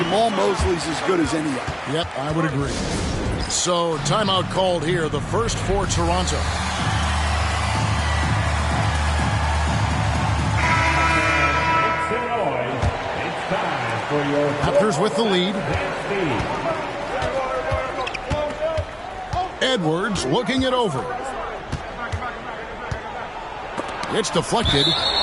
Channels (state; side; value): identical; both; correlation 1.00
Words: Mosley's as good as any of them. Yep, I would agree. So, timeout called here, the first for Toronto. Raptors with the lead. Edwards looking it over. It's deflected,